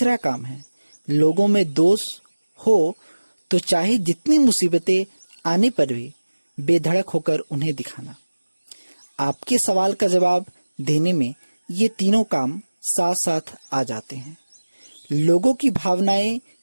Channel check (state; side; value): inverted; both; correlation -1.00